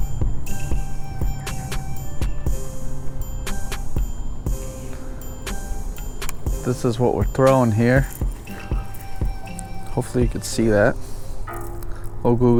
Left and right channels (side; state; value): both; identical; correlation 1.00